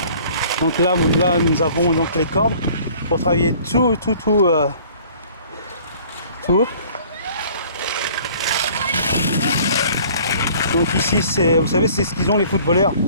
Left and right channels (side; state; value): both; inverted; correlation -0.52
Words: Donc là nous avons donc les cordes pour travailler tout. Donc ici, vous savez, c'est ce qu'ils ont les footballeurs,